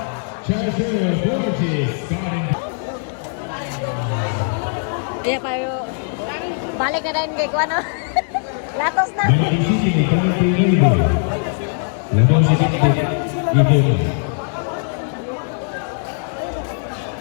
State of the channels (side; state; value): right; silent; 58 dB below the other